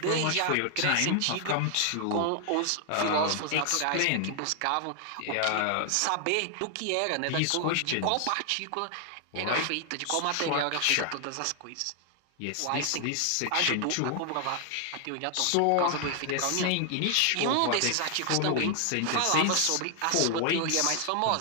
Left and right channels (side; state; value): both; different; correlation 0.00